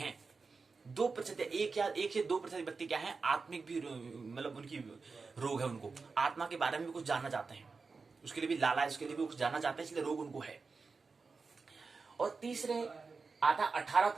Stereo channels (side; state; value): left; quieter; 4.5 dB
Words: 2% 1 से 2% व्यक्ति क्या है, आत्मिक भी, मतलब उनकी रोग है, उनको आत्मा के बारे में भी कुछ जानना चाहते हैं, उसके लिए भी लालच, उसके लिए भी कुछ जानना चाहते हैं, इसलिए रोग उनको है। और तीसरे आता